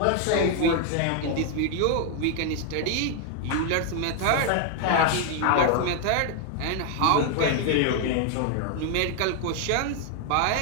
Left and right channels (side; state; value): both; different; correlation 0.00